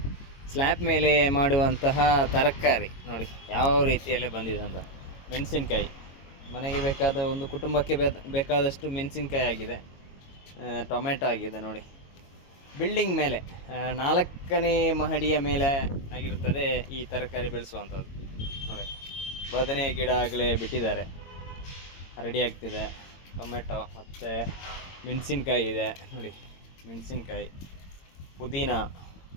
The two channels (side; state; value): right; late; 22 ms